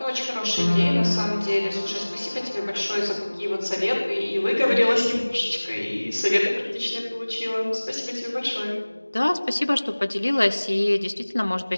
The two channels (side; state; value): both; inverted; correlation -1.00